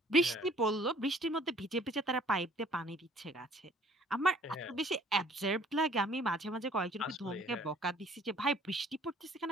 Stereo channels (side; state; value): both; normal; correlation 0.56